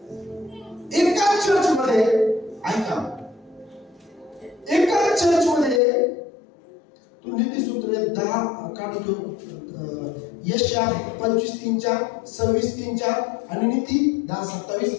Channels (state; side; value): drops out; right; at 5.8 s